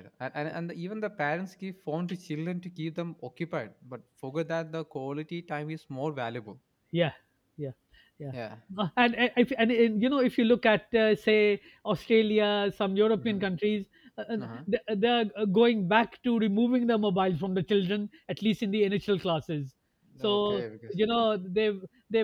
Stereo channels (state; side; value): identical; both; correlation 1.00